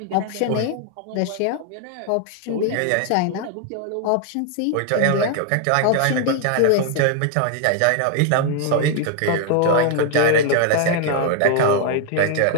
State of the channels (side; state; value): both; different; correlation 0.00